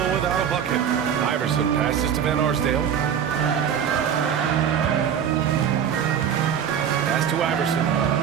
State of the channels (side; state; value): left; quieter; 8.4 dB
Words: without a bucket. Iverson passes to Van Arsdale. Pass to Iverson.